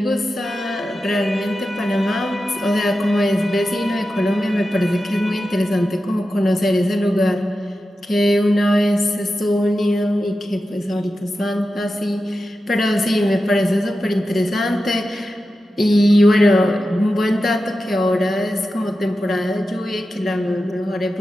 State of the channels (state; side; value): normal; both; correlation 0.92